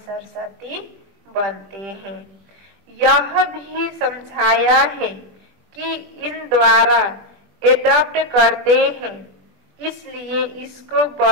बनते हैं। यह भी समझाया है कि इन द्वारा एडॉप्ट करते हैं, इसलिए इसको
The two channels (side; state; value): left; late; 20 ms